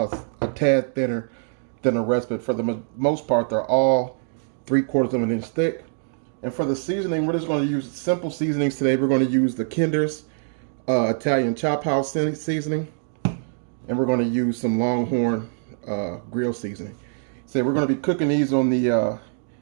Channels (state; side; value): silent; left; digital silence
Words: tad thinner than the rest. But for the most part, they're all 3/4 of an inch thick. And for the seasoning, we're just going to use simple seasonings today. We're going to use the Kinder's Italian Chop House seasoning, and we're going to use some Longhorn grill seasoning. So we're going to be cooking these on the